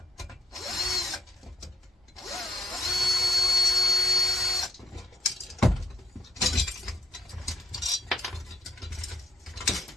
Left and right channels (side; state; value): both; normal; correlation 0.73